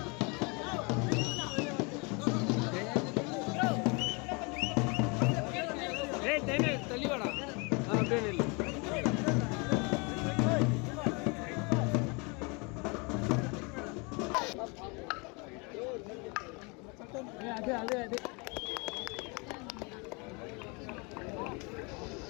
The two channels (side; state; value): right; quieter; 30.5 dB